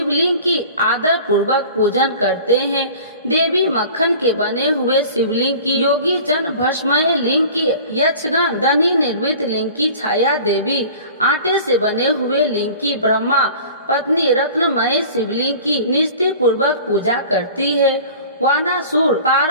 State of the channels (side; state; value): both; inverted; correlation -0.43